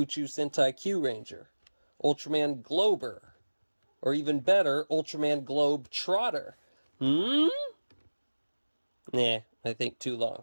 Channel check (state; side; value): inverted; both; correlation -1.00